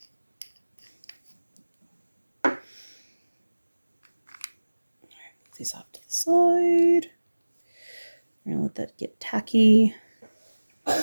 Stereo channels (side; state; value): both; inverted; correlation -1.00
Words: These off to the side. We're gonna let that get tacky.